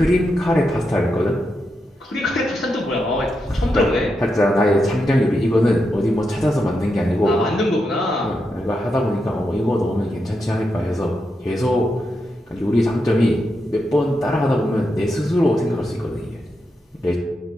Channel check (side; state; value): both; normal; correlation 0.85